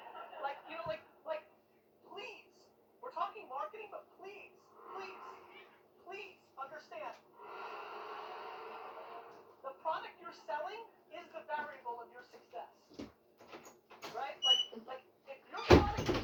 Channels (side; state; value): both; identical; correlation 1.00